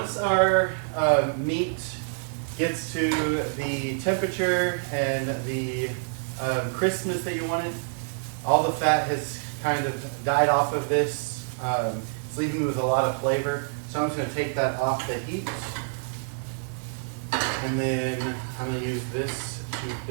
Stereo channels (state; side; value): silent; left; digital silence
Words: our meat gets to the temperature and the crispness that you wanted, all the fat has kind of died off of this. It's leaving me with a lot of flavor. So I'm just going to take that off the heat. And then I'm going to use this to